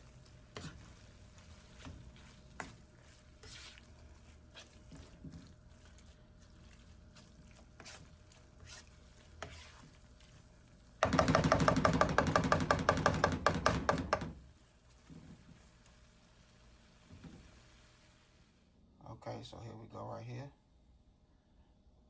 Okay, so here we go right here.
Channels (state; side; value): identical; both; correlation 1.00